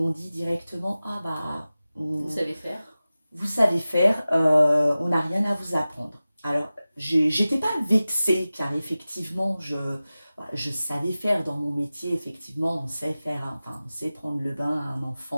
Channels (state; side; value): inverted; both; correlation -0.96